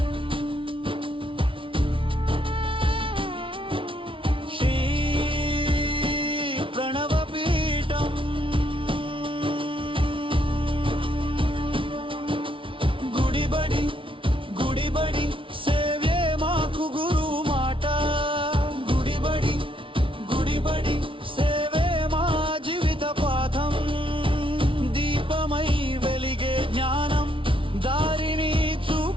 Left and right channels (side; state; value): left; late; 0.25 ms